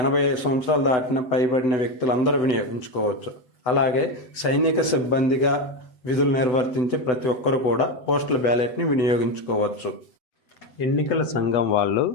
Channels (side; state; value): right; late; 8.0 ms